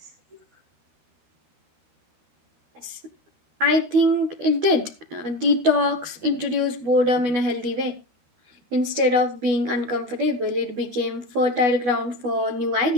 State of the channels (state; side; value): late; left; 12 ms